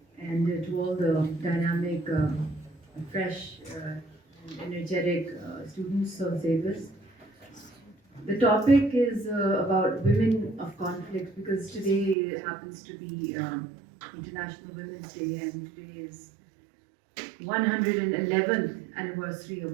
and to all the dynamic, fresh, and energetic students of ZABIST. The topic is about women of conflict because today happens to be International Women's Day, and today is 111th anniversary of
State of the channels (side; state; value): left; drops out; at 12.2 s